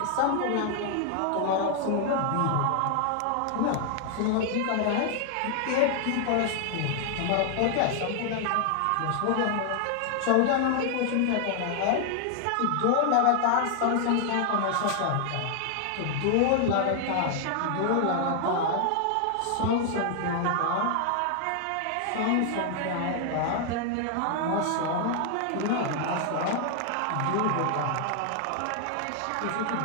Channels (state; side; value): different; both; correlation 0.00